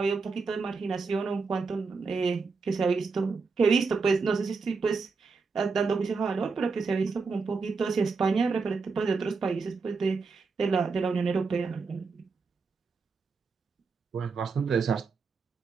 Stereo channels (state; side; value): quieter; left; 4.6 dB